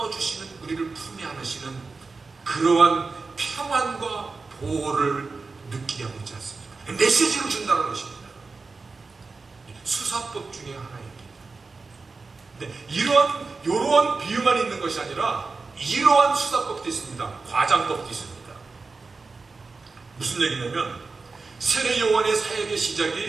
주시는, 우리를 품에 안으시는 그러한 평안과 보호를 느끼게 하고 있지 않습니까? 메시지를 준다는 것입니다. 수사법 중에 하나입니다. 근데 이러한 비유만 있는 것이 아니라 이러한 수사법도 있습니다. 과장법도 있습니다. 무슨 얘기냐면 세례 요한의 사역의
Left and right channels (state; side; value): quieter; left; 4.1 dB